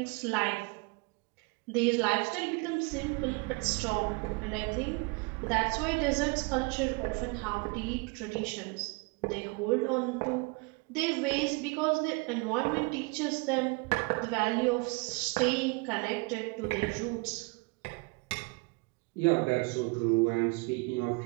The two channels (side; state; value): left; quieter; 29.2 dB